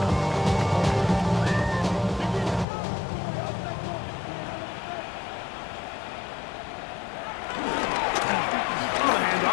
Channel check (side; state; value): right; drops out; at 2.7 s